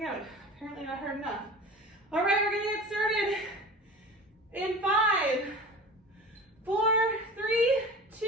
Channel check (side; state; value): both; normal; correlation 0.37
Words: out. Apparently not hard enough. All right, we're gonna get started In 5, 4, 3,